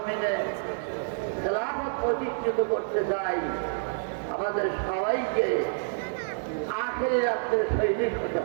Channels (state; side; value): silent; left; digital silence